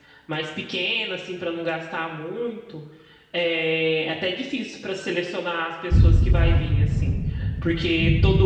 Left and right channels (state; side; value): identical; both; correlation 1.00